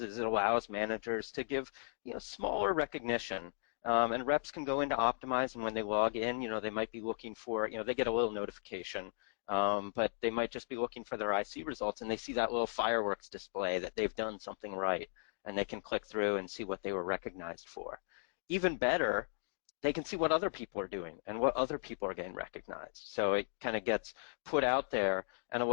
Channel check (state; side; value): silent; right; digital silence